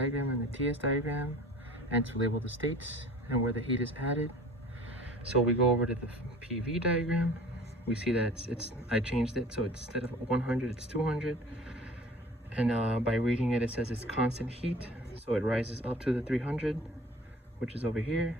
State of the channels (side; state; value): both; normal; correlation 0.45